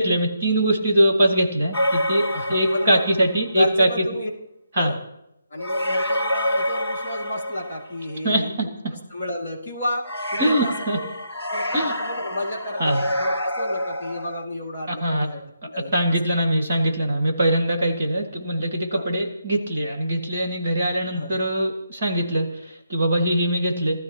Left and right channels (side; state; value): both; inverted; correlation -0.80